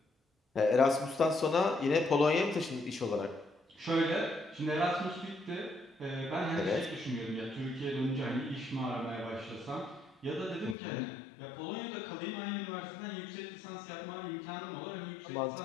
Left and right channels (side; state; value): right; drops out; at 10.8 s